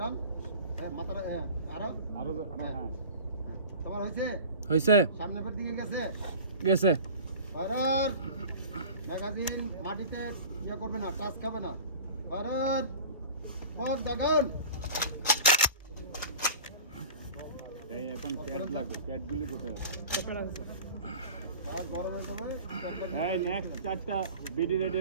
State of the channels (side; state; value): both; inverted; correlation -0.38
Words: হ্যাঁ মাথার হ্যাঁ আরো হ্যাঁ তোমার হইছে হয়েছে সামনের দিকে গেছে গেছে ফায়ার ম্যাগাজিন মাটিতে ইয়ে করবে না টাচ খাবে না ফায়ার কত দাগান এই এখন প্যাড লাগবে প্যাডগুলি কোথায় আর গরম হয়ে যাবে এই নেক্সট চারটা বিডি রেডি